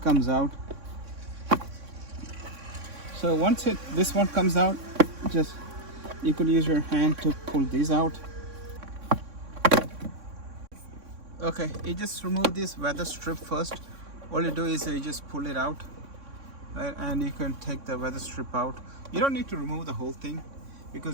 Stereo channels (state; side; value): late; left; 3.6 ms